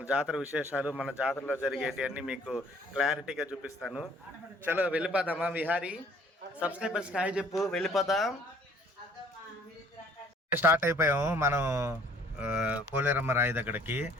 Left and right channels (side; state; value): both; normal; correlation 0.57